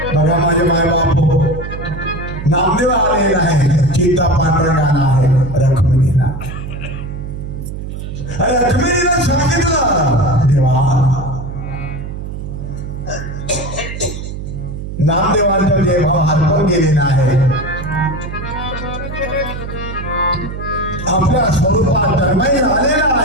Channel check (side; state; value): right; noise; hum, 8 dB below the sound